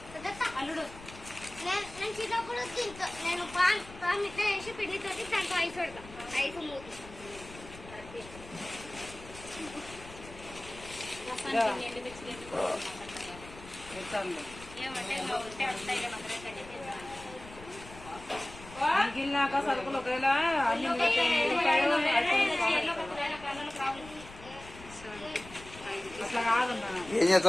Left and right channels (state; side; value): noise; left; rumble, 17 dB below the sound